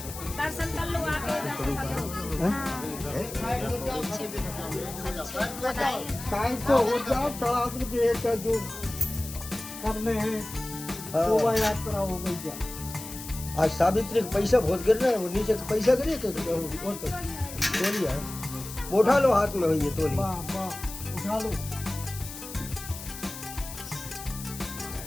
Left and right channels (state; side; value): noise; left; hiss, 11 dB below the sound